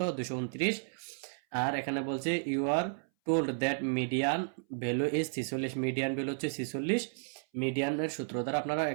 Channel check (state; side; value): silent; left; 56 dB below the other